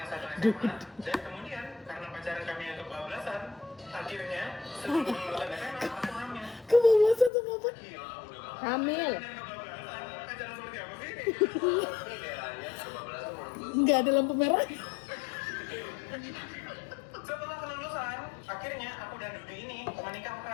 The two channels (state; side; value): drops out; right; at 7.3 s